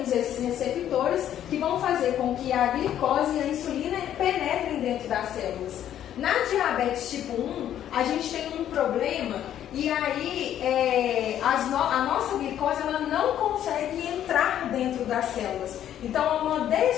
esses receptores que vão fazer com que a glicose e a insulina penetrem dentro das células. Na diabetes tipo 1, a gente tem um problema e aí a nossa glicose ela não consegue entrar dentro das células. Então, há uma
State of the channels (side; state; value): right; quieter; 10.9 dB